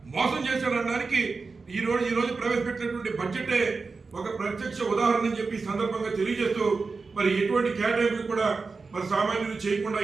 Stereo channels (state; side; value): quieter; left; 4.3 dB